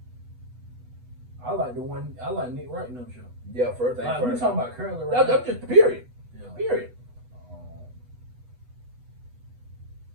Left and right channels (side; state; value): left; late; 8.1 ms